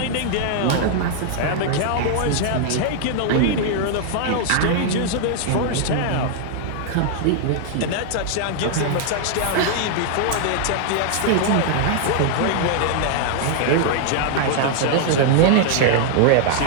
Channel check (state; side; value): different; both; correlation 0.00